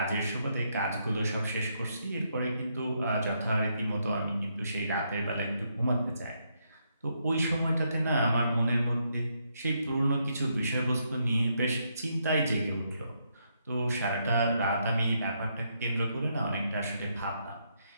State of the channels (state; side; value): inverted; both; correlation -0.77